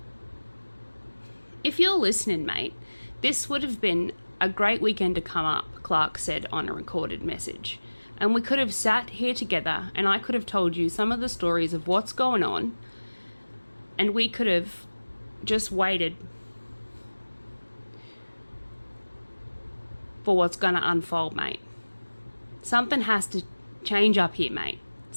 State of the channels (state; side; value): inverted; both; correlation -1.00